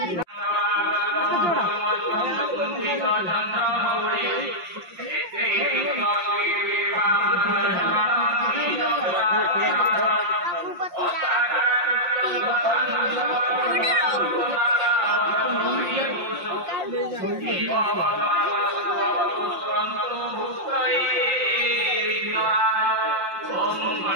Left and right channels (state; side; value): late; left; 5.7 ms